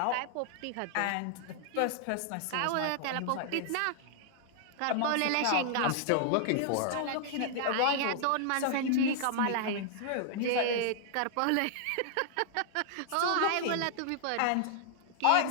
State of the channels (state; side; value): different; both; correlation -0.01